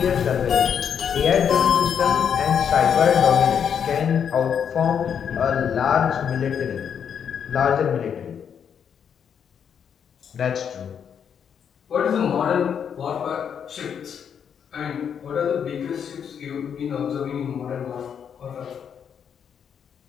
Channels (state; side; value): quieter; right; 7.8 dB